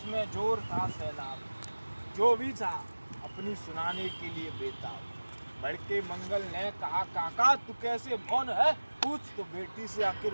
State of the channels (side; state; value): both; inverted; correlation -1.00